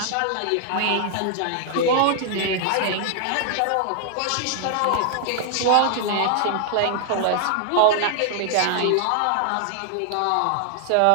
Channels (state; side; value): different; both; correlation 0.00